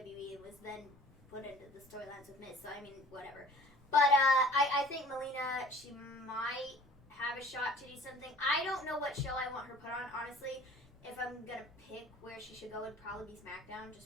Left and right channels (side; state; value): both; normal; correlation 0.47